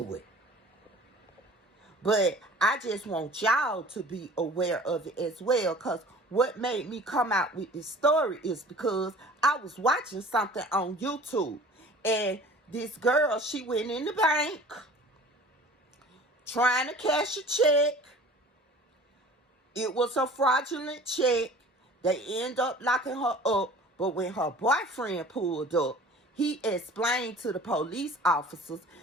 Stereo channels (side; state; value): both; normal; correlation 0.45